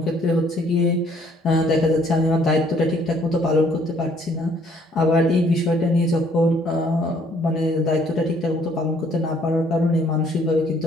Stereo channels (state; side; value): normal; both; correlation 0.63